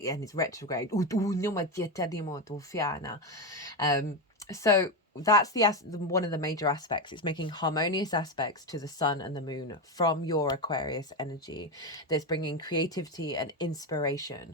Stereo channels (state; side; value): normal; both; correlation 0.12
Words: it's retrograde. So that's one of the major aspects. It's making harmonious aspects to the sun and the moon from your Aquarius energy. That's bringing creativity and